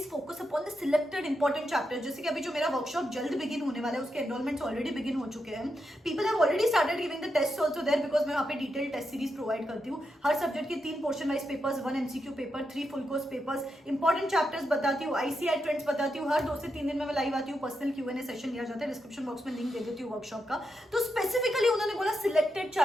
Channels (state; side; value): normal; both; correlation 0.85